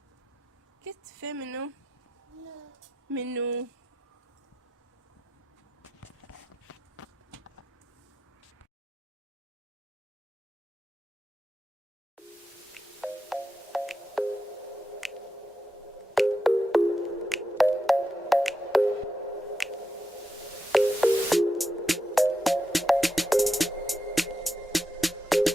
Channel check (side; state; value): both; normal; correlation 0.86